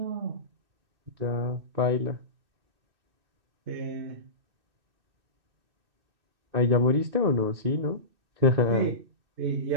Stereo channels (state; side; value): late; left; 2.6 ms